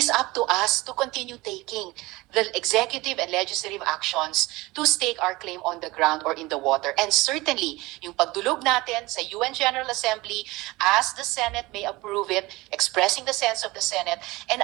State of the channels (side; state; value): left; quieter; 21.2 dB